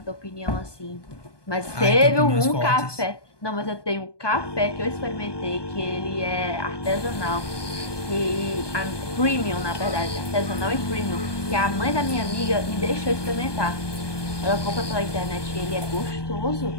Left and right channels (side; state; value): right; late; 1.2 ms